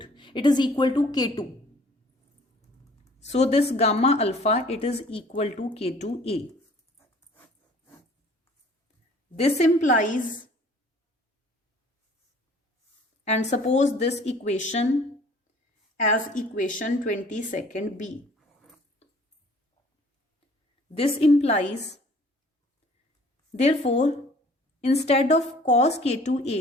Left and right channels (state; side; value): normal; both; correlation 0.53